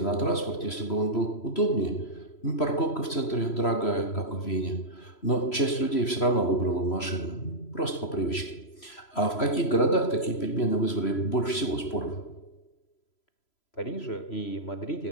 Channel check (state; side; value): late; right; 3.0 ms